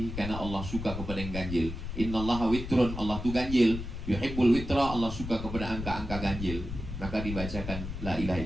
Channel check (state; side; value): noise; left; rumble, 7 dB below the sound